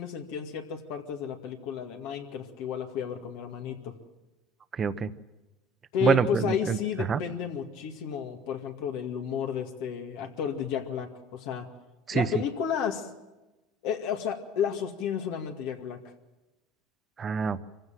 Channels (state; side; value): normal; both; correlation 0.50